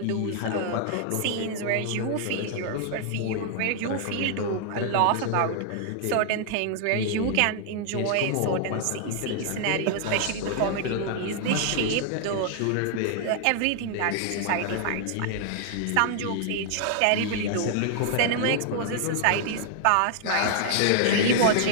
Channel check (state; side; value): different; both; correlation -0.01